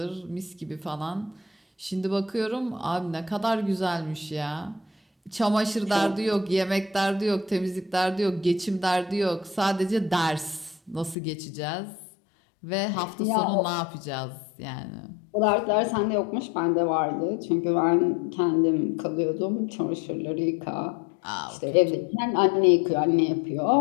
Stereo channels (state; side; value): drops out; right; at 11.2 s